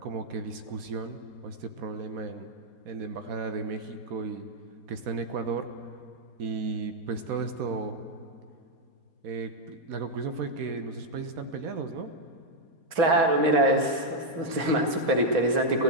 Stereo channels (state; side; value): late; left; 4.2 ms